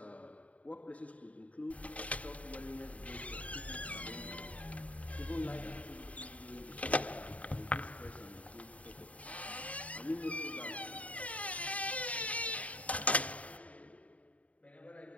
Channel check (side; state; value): right; late; 0.067 ms